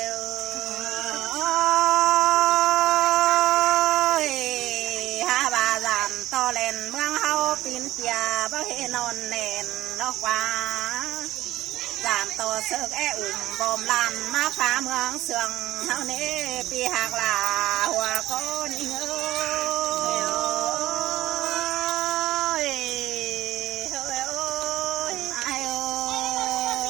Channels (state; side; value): quieter; left; 15.6 dB